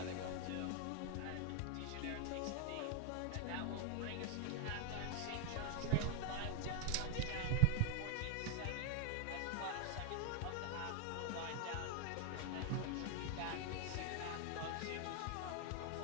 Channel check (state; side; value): different; both; correlation 0.00